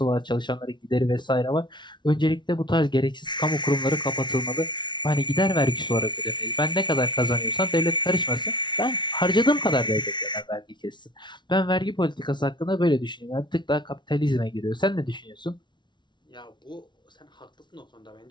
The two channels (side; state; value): right; late; 0.22 ms